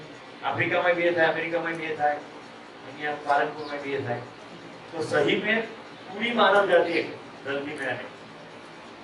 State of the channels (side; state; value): both; identical; correlation 1.00